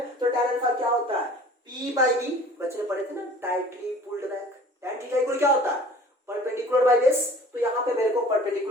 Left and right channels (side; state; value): both; normal; correlation 0.47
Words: तो tan अल्फा क्या होता है, p बाई बी, बच्चे ने पढ़े थे ना tightly pulled back. tan theta equal क्या होता है, परपेंडिकुलर बाई बेस, तो यहां पे मेरे को